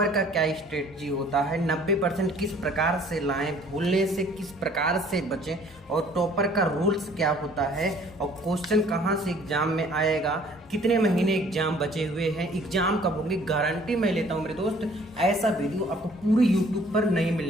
का क्या स्ट्रेटजी होता है, 90% किस प्रकार से लाएं, भूलने से किस प्रकार से बचें, और टॉपर का रूल्स क्या होता है, और क्वेश्चन कहाँ से एग्जाम में आएगा, कितने महीने एग्जाम बचे हुए हैं, एग्जाम कब होंगे, गारंटी मैं लेता हूं मेरे दोस्त। ऐसा वीडियो आपको पूरी यूट्यूब पर नहीं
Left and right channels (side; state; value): both; normal; correlation 0.56